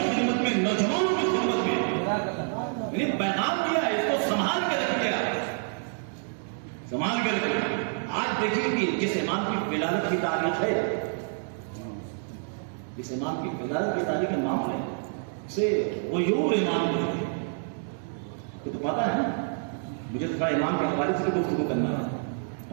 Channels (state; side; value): silent; left; 59 dB below the other